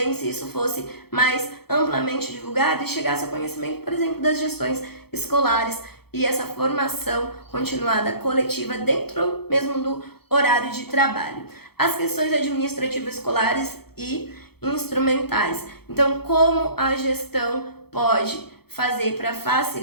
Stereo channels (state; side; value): late; right; 0.96 ms